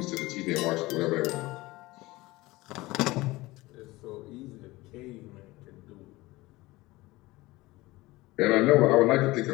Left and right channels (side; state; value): right; quieter; 20.2 dB